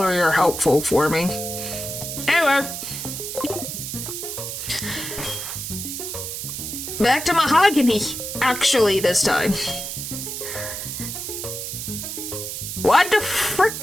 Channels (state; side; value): noise; right; hiss, 6 dB below the sound